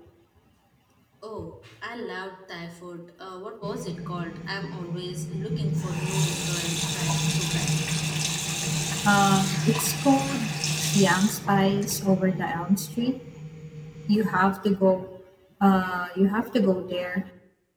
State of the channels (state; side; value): identical; both; correlation 1.00